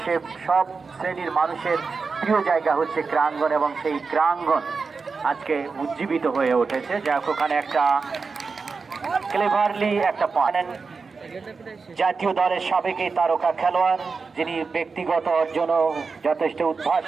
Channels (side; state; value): left; quieter; 4.7 dB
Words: সব শ্রেণীর মানুষের প্রিয় জায়গা হচ্ছে ক্রীড়াঙ্গন এবং সেই ক্রীড়াঙ্গন আজকে উজ্জীবিত হয়ে উঠেছে। যাক ওখানে একটা ক্লেভারলি একটা পয়েন্ট জাতীয় দলের সাবেক এই তারকা খেলোয়াড় যিনি ব্যক্তিগত অর্জনও যথেষ্ট